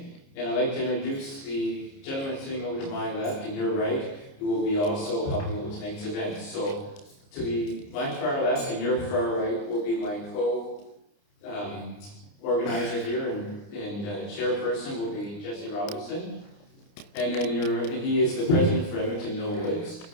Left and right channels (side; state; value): right; late; 29 ms